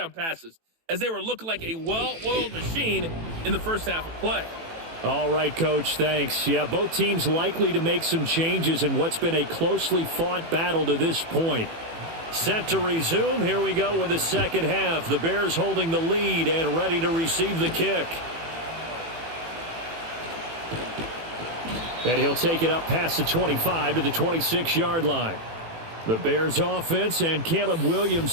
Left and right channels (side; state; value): left; late; 18 ms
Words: passes as they were looking like a well-oiled machine in the first half of play. All right, Coach, thanks. Yeah, both teams likely to make some changes in what's been a closely fought battle to this point. Set to resume. Here we go with the second half. The Bears holding the lead and ready to receive the kick. And he'll take it up past the 25 to the 26-yard line. The Bears offense and Caleb Williams